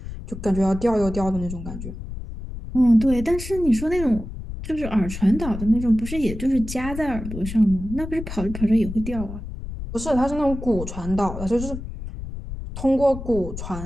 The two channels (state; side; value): noise; left; rumble, 9 dB below the sound